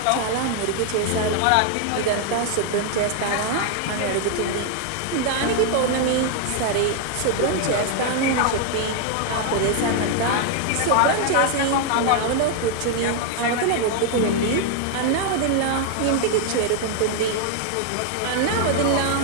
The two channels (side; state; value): both; different; correlation 0.00